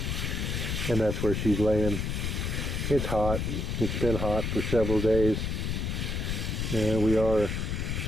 And that's where she's laying. It's hot. It's been hot for several days. And we are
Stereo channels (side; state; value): left; noise; rumble, 1 dB below the sound